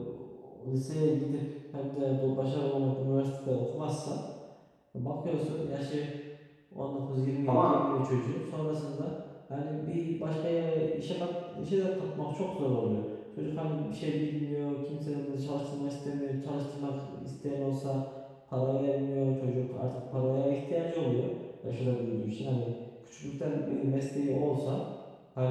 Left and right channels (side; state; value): both; identical; correlation 1.00